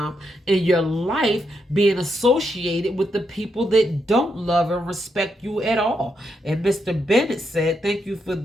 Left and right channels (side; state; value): both; normal; correlation 0.81